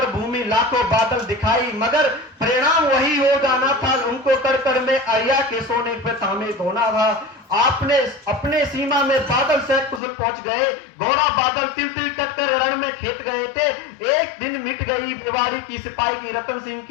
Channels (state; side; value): drops out; right; at 10.0 s